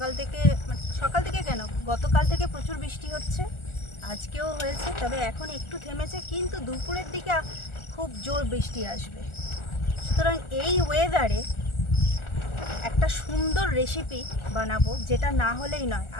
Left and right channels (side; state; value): right; late; 1.4 ms